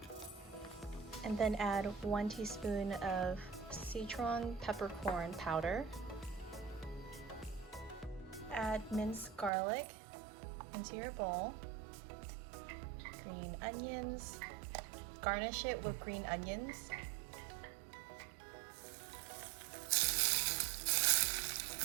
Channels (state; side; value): drops out; left; at 9.5 s